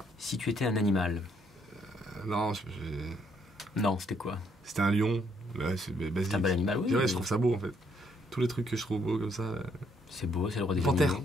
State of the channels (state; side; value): normal; both; correlation 0.70